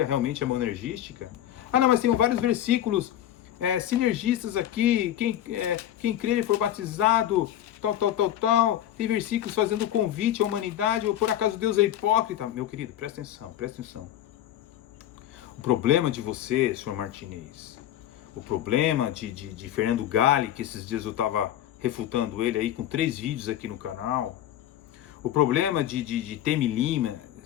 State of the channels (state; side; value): quieter; right; 11.9 dB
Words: realmente é monergística. Ah, não, mas tem vários versículos sinergistas aqui, quem crer e for batizado, tal. Tem versículos fazendo convite à humanidade, ou por acaso Deus é hipócrita. Meu querido, presta atenção. O problema de você, senhor Martinez, o problema de Fernando Galli, que esses dias eu estava refutando ele aí com 3 vídeos aqui no canal, o problema de Temi Lima,